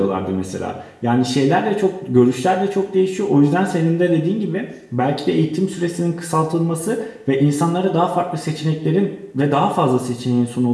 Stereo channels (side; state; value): both; identical; correlation 1.00